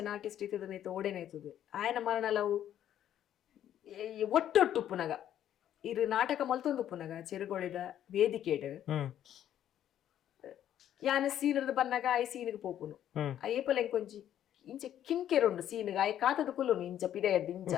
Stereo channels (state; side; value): quieter; right; 10.9 dB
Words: ಆರ್ಟಿಸ್ಟ್ ಇತ್ತದನೈತು ಓಡೇನೈತದು ಆಯನ ಮರಣಲವು ಒಟ್ಟೊಟ್ಟು ಪುನಗ ಇರು ನಾಟಕ ಮಲ್ತೊಂದು ಪುನಗ ಚೆರುಗೊಳಿದ ವೇದಿಕೆಡ್ ಯಾನ ಸೀನದ ಬನ್ನಾಗ ಆಯ್ ಸೀನಿಗೆ ಪೋಪುನು ಅಯ್ಯಪ್ಪಲ ಎಂಕೊಂಜಿ ಇಂಚ ಕಿನ್ಕೆರುಂಡು ಸೀನಿಗೆ ಆಯ್ ಕಾತದ ಕುಲ್ಲುನು ಇಂಚ ಪಿದೆಯದ್ದು ಇಂಚ